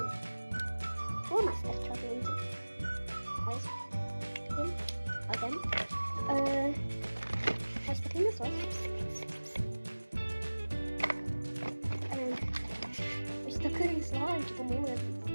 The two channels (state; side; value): inverted; both; correlation -1.00